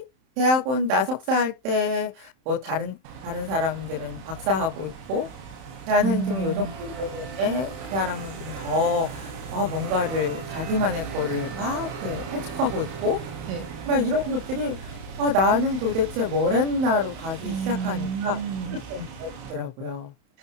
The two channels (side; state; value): left; late; 31 ms